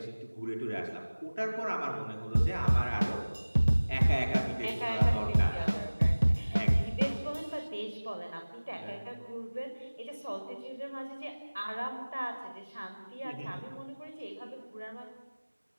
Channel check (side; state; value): both; inverted; correlation -1.00